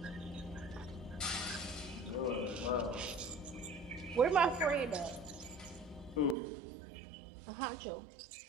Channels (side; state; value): left; drops out; at 6.4 s